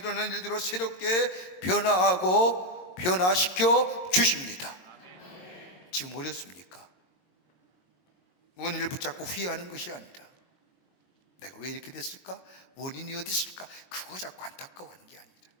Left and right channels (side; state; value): right; late; 22 ms